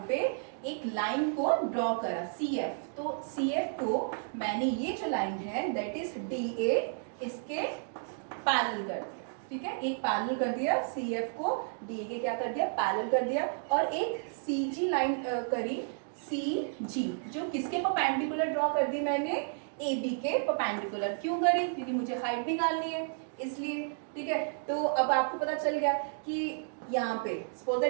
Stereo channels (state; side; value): silent; left; digital silence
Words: पे एक लाइन को ड्रॉ करा, CF। तो CF को मैंने ये जो लाइन है दैट इज DA, इसके पैरेलल कर दिया। ठीक है, एक पैरेलल कर दिया, CF को DA के क्या कर दिया, पैरेलल कर दिया, और एक CG लाइन करी, CG, जो किसके परपेंडिकुलर ड्रॉ कर दी मैंने, AB के परपेंडिकुलर। क्यों करी, क्योंकि मुझे हाइट निकालनी है इसलिए। ठीक है, तो अब आपको पता चल गया कि यहाँ पे सपोज